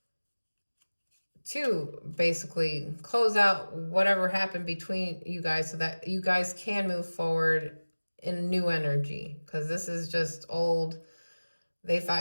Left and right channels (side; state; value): both; inverted; correlation -1.00